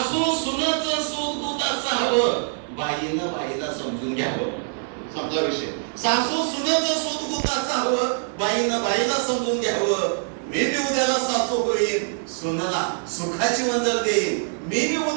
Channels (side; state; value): left; silent; digital silence